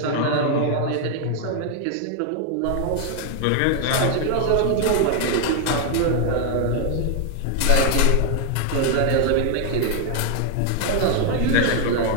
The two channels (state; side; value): different; both; correlation 0.00